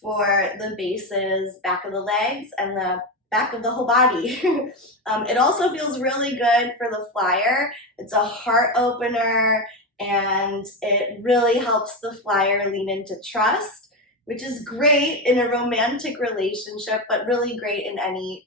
the bases, back of the legs, and the back of the whole body. It also feels really good for the flyer. It's a heart opener, and it really helps the flyer lean into trust, which is great in a romantic relationship, but really great in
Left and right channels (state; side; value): normal; both; correlation 0.15